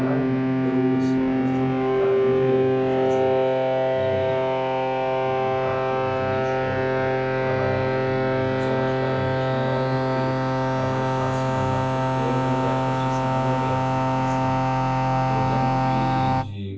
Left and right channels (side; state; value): both; identical; correlation 1.00